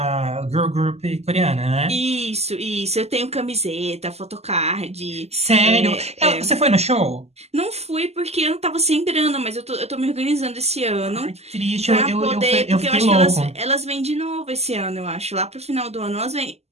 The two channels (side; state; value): left; late; 0.30 ms